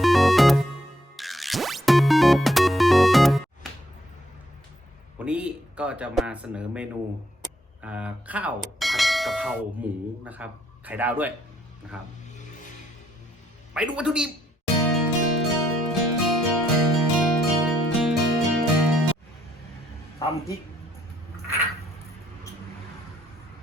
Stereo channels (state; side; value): normal; both; correlation 0.71